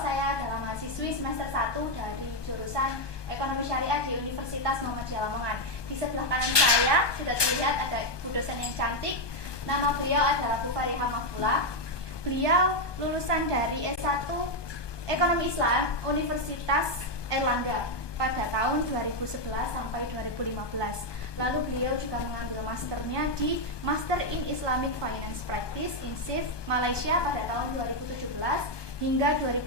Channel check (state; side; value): late; right; 1.2 ms